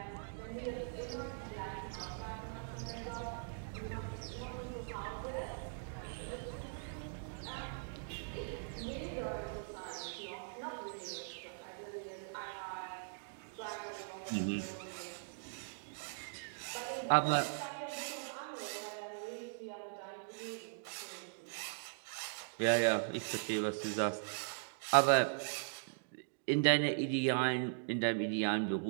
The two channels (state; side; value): silent; left; digital silence